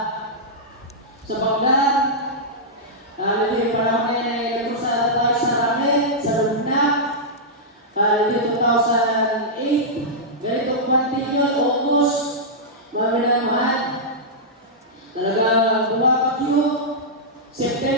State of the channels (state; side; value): normal; both; correlation -0.11